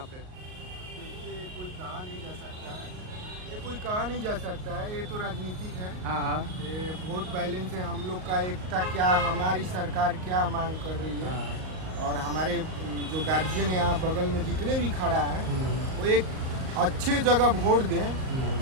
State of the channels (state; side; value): late; left; 38 ms